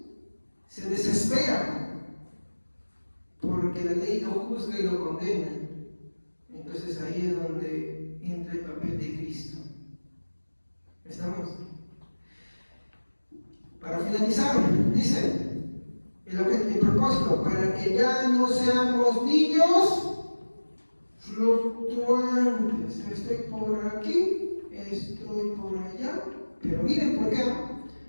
se desespera. Porque la ley lo juzga y lo condena. Entonces ahí es donde entra el papel de Cristo. ¿Estamos? Para finalizar, dice el propósito, para que ya no seamos niños fluctuantes. Estoy por aquí, estoy por allá, pero miren por qué.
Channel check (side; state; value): both; inverted; correlation -1.00